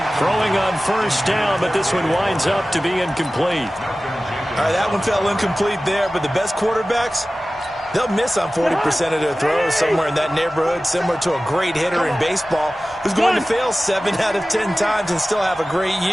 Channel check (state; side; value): normal; both; correlation 0.96